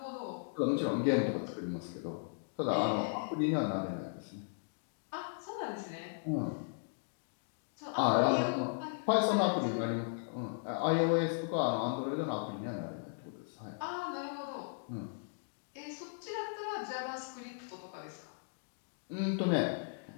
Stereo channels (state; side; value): silent; right; digital silence